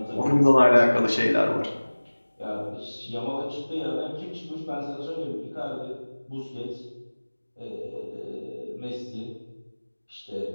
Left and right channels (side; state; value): both; inverted; correlation -1.00